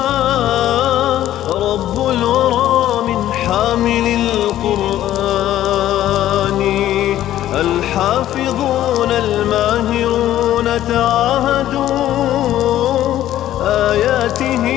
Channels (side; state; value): right; quieter; 12.9 dB